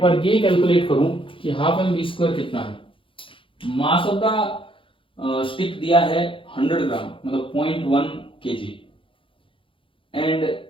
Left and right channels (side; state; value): right; late; 0.25 ms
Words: बार ये कैलकुलेट करूं कि हाफ एम वी स्क्वायर कितना है। मास ऑफ द स्टिक दिया है 100 ग्राम, मतलब 0.1 kg, एंड